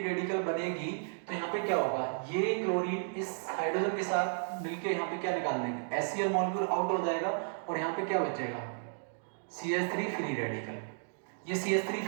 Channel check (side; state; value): left; silent; digital silence